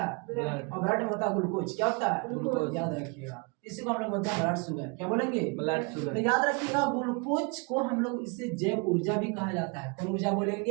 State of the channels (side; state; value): left; quieter; 31.9 dB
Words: ब्लड। और ब्लड में होता है ग्लूकोज। क्या होता है? ग्लूकोज। याद रखिएगा, इसी को हम लोग बोलते हैं ब्लड शुगर। क्या बोलेंगे? Blood sugar. तो याद रखिएगा ग्लूकोज को हम लोग इससे जैव ऊर्जा भी कहा जाता है। कौन ऊर्जा